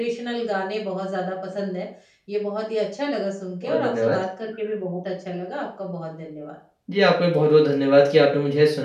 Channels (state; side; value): identical; both; correlation 1.00